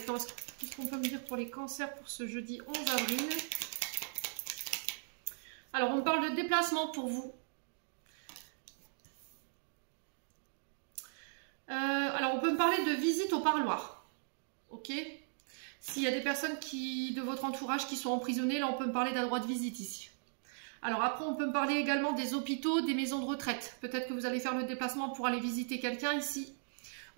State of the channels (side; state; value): left; silent; digital silence